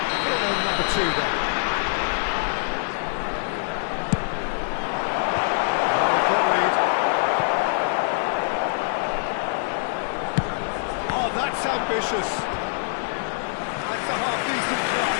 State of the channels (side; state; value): right; silent; digital silence